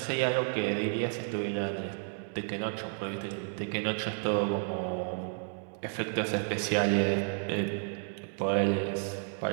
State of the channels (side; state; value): left; silent; 57 dB below the other